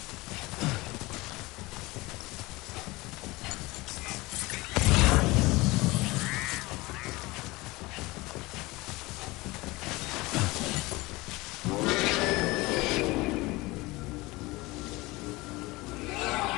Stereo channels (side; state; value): right; quieter; 21.9 dB